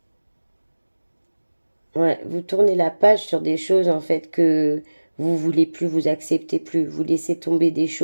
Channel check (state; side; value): inverted; both; correlation -1.00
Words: Ouais, vous tournez la page sur des choses en fait que vous voulez plus, vous acceptez plus, vous laissez tomber des